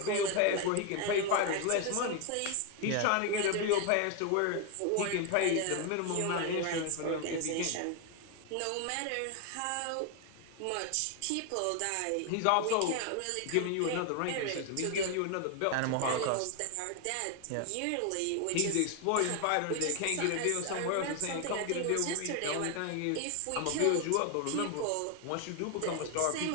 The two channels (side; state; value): both; different; correlation 0.01